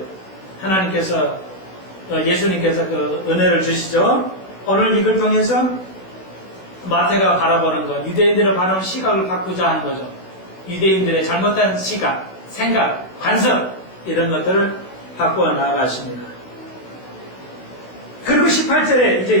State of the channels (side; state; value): right; late; 16 ms